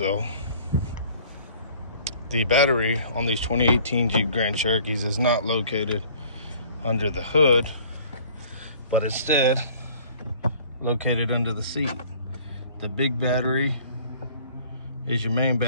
the battery on these 2018 Jeep Grand Cherokees is not located under the hood, but instead located under the seat. The big battery is your main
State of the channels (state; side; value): inverted; both; correlation -0.53